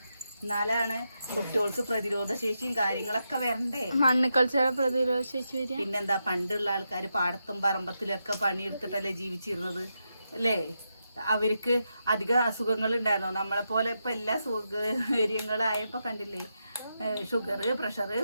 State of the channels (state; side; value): inverted; both; correlation -0.85